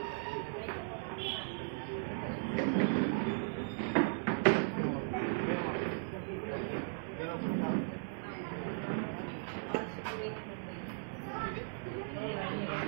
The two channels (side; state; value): left; silent; 53 dB below the other